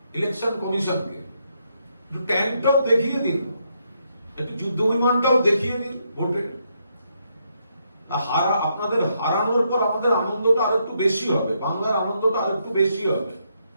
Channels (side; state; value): both; inverted; correlation -0.78